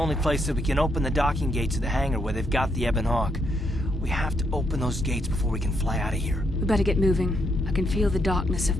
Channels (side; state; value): both; normal; correlation 0.77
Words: place that we can open the docking gates of the hangar where they've got the Ebon Hawk. We have to open those gates before we can fly out of here. We better get moving. I can feel the darkness of